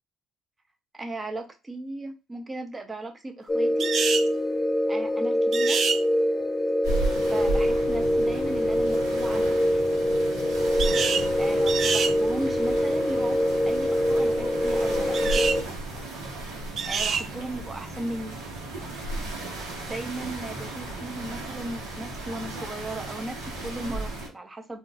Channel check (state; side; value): normal; both; correlation 0.90